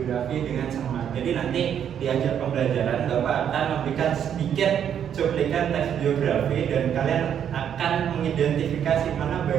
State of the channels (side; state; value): left; quieter; 9.0 dB